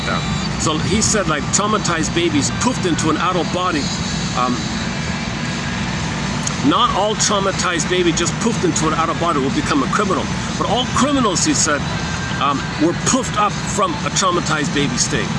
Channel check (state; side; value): identical; both; correlation 1.00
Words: that. So he said, like, traumatized babies poofed into an adult body not all traumatized baby just poofed into an out-of-body will become a criminal. But all criminals, he said, were poofed up from a traumatized baby state.